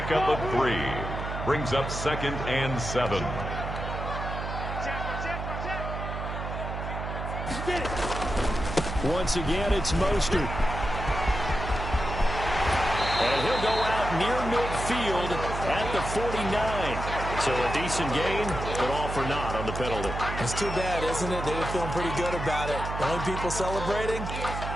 of 3. Brings up 2nd and 7. Once again, it's Mostert. And he'll go out near midfield at the 49. So a decent gain, but all for naught on the penalty. It's too bad, isn't it? They were feeling pretty good about it. The only people celebrating,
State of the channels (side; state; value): right; noise; hum, 5 dB below the sound